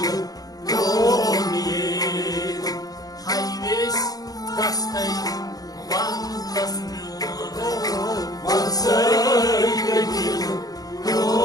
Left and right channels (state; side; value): late; right; 0.18 ms